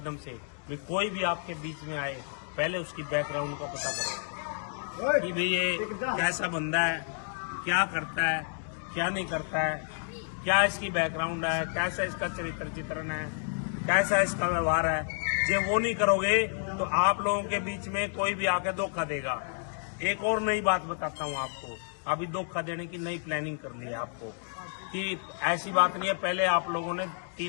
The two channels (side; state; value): right; silent; digital silence